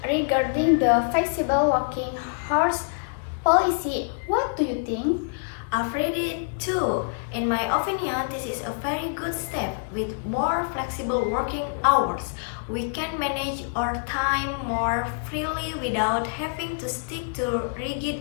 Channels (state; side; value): silent; right; digital silence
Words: regarding the flexible working hours policy. What do you think? I've read it too. In my opinion, this is a very good step. With more flexible working hours, we can manage our time more freely without having to stick to